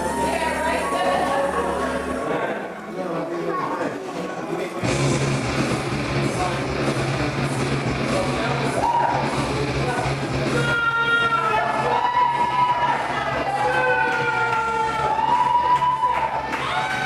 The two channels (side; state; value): both; identical; correlation 1.00